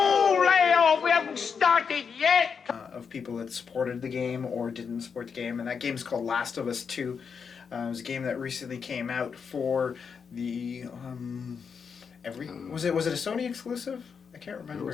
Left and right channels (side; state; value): right; quieter; 6.2 dB